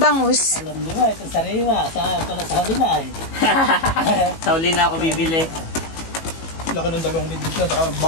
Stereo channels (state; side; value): late; right; 18 ms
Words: Alam niyo ito sariwa. Pala sa huli na eh. Sa uli na ako bibili. Laki ng dalawang midbit na, saka